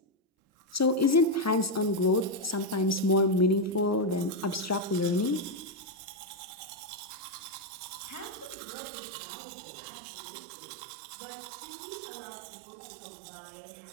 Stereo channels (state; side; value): drops out; left; at 8.6 s